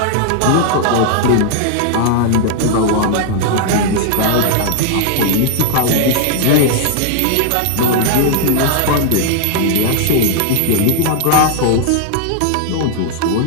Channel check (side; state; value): both; different; correlation 0.00